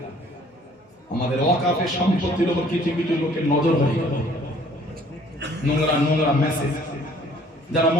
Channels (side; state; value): both; normal; correlation 0.57